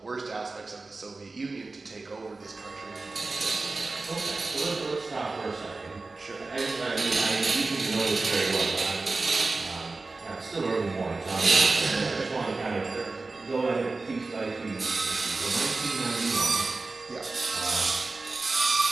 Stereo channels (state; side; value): quieter; left; 3.6 dB